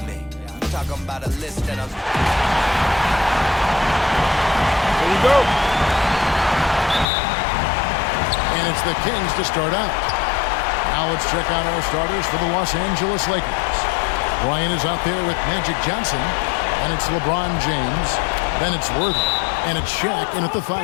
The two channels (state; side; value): drops out; right; at 7.1 s